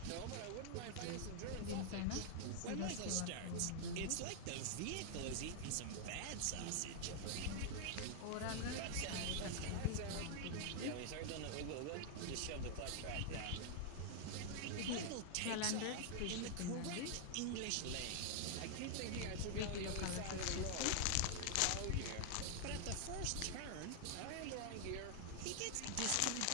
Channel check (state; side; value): different; both; correlation 0.00